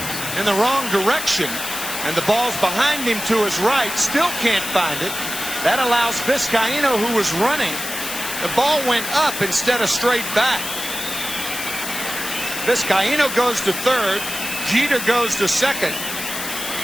in the wrong direction. And the ball's behind him to his right. Still can't find it. That allows Vizcaíno, who was running. The ball went up instead of straight back. Vizcaíno goes to third. Jeter goes to second.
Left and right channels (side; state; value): left; noise; hiss, 6 dB below the sound